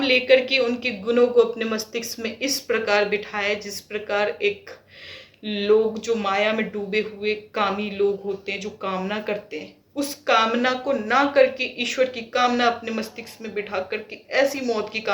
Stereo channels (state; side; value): identical; both; correlation 1.00